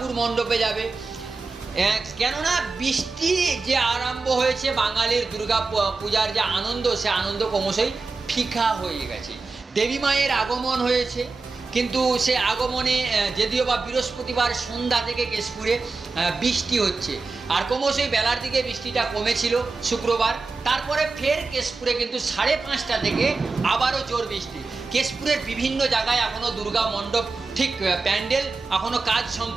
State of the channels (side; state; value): left; quieter; 4.0 dB